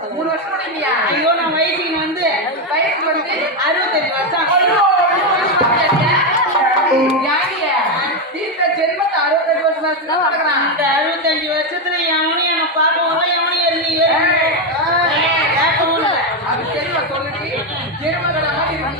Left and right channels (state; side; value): normal; both; correlation 0.07